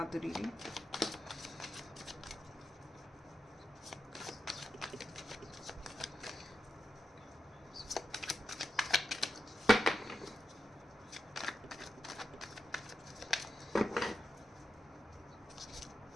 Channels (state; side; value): normal; both; correlation 0.88